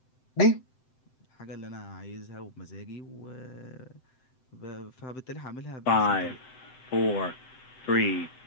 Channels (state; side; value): late; right; 7.8 ms